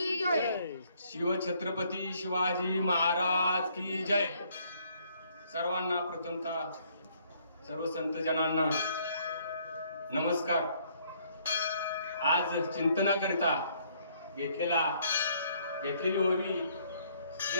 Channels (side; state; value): both; inverted; correlation -0.65